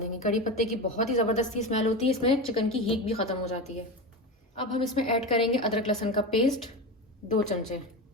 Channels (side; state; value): both; normal; correlation 0.22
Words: कड़ी पत्ते की बहुत ही ज़बरदस्ती स्मेल होती है, इसमें चिकन की हीट भी ख़त्म हो जाती है। अब हम इसमें ऐड करेंगे अदरक लहसुन का पेस्ट 2 चमचे।